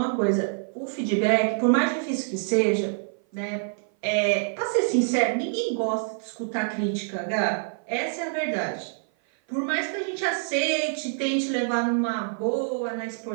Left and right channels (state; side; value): silent; left; 56 dB below the other